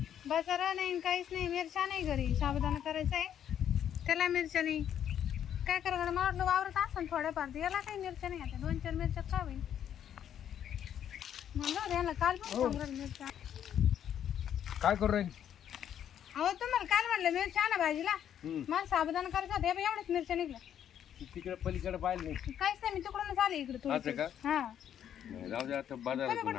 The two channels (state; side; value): quieter; right; 9.7 dB